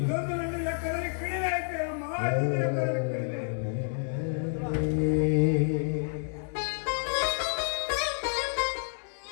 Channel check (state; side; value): silent; right; digital silence